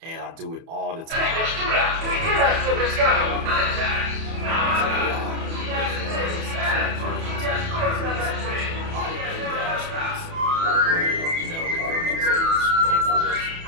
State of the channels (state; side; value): late; left; 31 ms